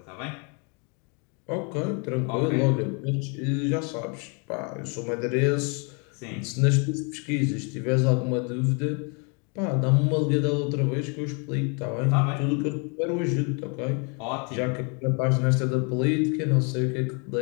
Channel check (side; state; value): right; quieter; 35.4 dB